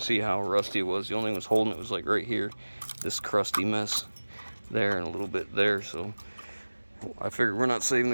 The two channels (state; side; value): inverted; both; correlation -1.00